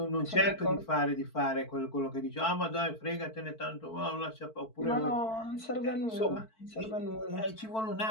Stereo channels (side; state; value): right; late; 4.5 ms